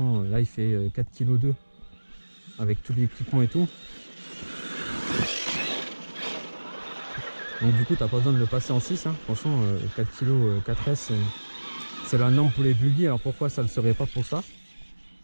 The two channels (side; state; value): both; inverted; correlation -1.00